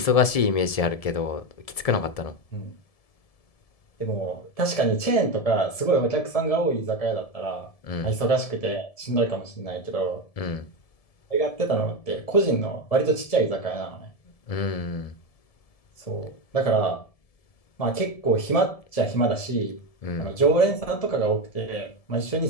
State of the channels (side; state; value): right; late; 1.7 ms